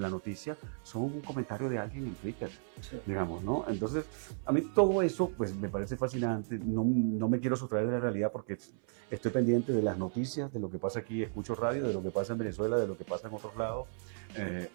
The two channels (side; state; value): left; silent; 55 dB below the other